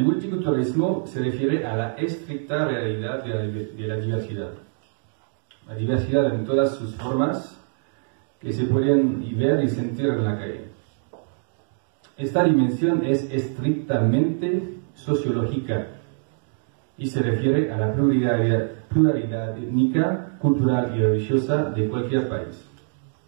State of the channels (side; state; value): left; silent; digital silence